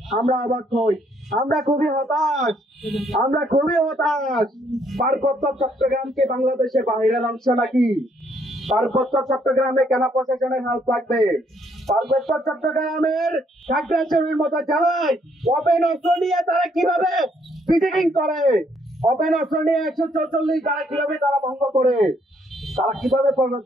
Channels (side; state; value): both; normal; correlation 0.69